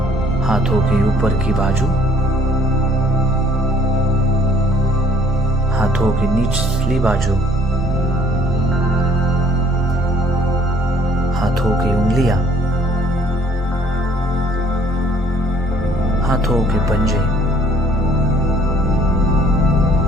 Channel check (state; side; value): normal; both; correlation 0.59